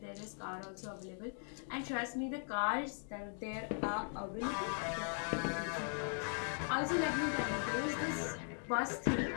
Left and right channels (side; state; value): right; silent; 51 dB below the other